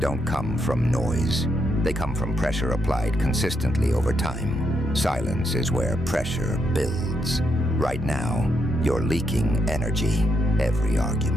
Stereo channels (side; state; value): both; normal; correlation 0.79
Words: come from noise. They come from pressure applied consistently over time. Silence is where pressure builds. Right now, you're leaking energy. Every